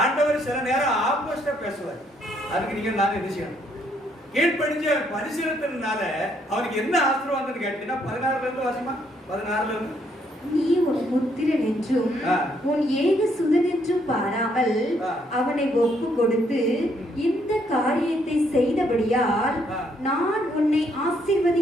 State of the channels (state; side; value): normal; both; correlation 0.70